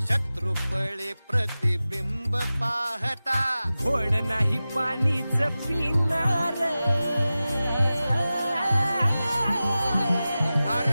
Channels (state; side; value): inverted; both; correlation -0.95